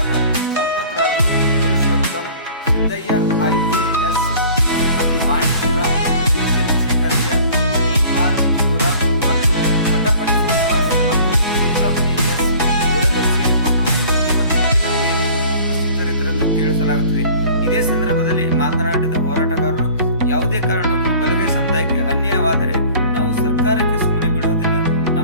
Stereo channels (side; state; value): both; inverted; correlation -0.48